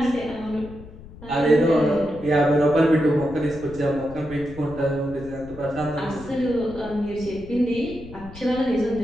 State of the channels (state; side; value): noise; left; rumble, 16 dB below the sound